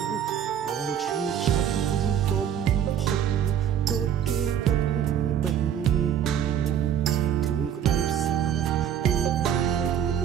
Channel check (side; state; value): left; quieter; 9.4 dB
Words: បងឈឺចាប់បំផុតដូចគេដុតបេះទ្រូងក្តៅផ្សាពីបែកមន